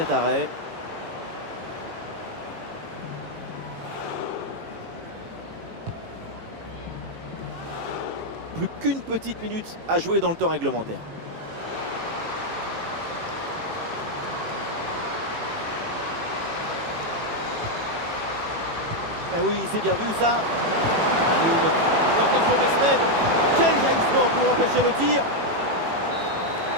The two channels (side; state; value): left; late; 18 ms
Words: arrêt. Plus qu'une petite minute à jouer dans le temps réglementaire. Eh oui, c'est bien vu ça. Attention Mesmed. Quel jaillissement pour empêcher le tir.